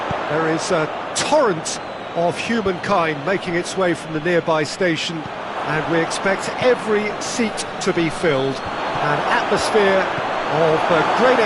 There is a torrent of humankind making its way from the nearby station, and we expect every seat to be filled. An atmosphere of great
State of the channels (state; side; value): identical; both; correlation 1.00